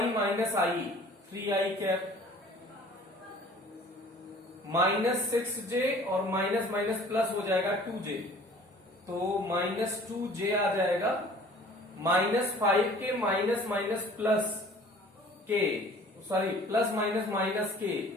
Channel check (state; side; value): normal; both; correlation 0.49